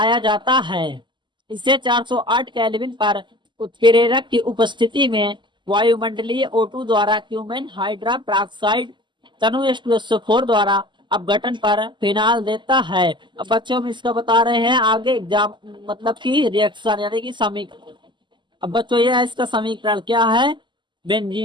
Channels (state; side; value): late; left; 0.22 ms